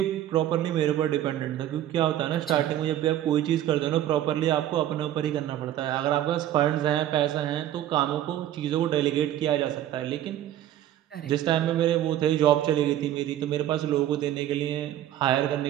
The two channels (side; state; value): left; quieter; 12.3 dB